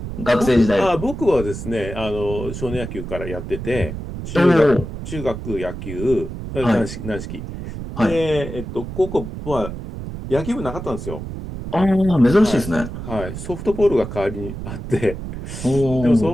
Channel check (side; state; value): right; noise; rumble, 8 dB below the sound